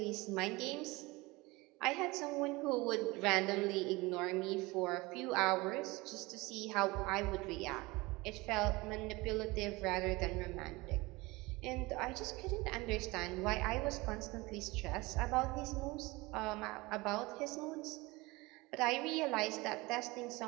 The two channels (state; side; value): quieter; left; 22.7 dB